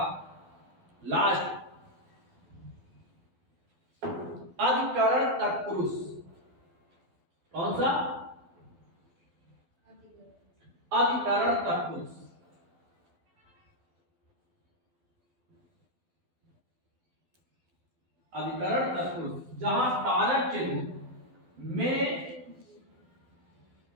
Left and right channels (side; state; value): left; late; 12 ms